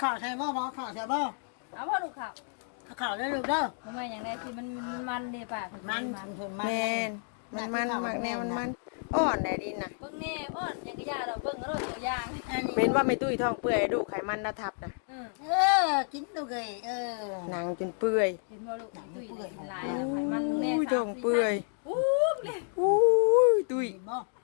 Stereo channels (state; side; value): silent; right; 57 dB below the other